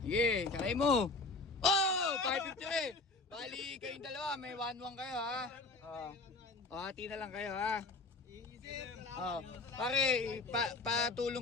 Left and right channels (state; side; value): quieter; right; 3.5 dB